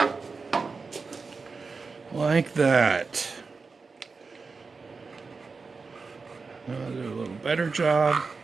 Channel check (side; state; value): left; quieter; 4.5 dB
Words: Like that. Now I'll do a little better job.